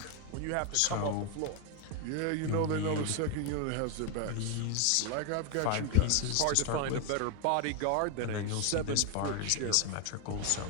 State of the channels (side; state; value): both; different; correlation 0.01